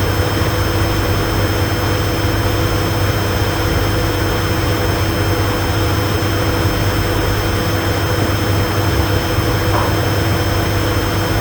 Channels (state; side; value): identical; both; correlation 1.00